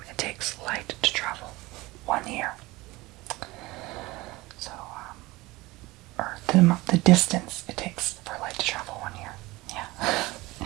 it takes light to travel 1 year. So, or the distance it takes for light to travel 1 year. Yeah.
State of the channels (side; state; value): left; quieter; 20.8 dB